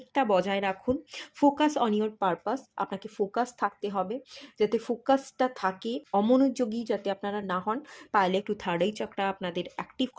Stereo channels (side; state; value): both; identical; correlation 1.00